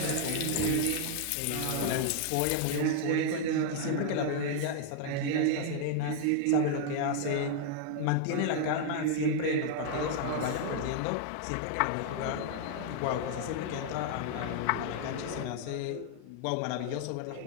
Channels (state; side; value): different; both; correlation 0.00